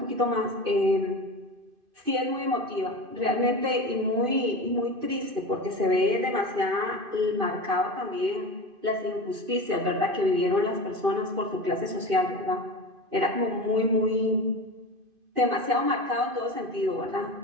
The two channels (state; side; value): late; left; 2.5 ms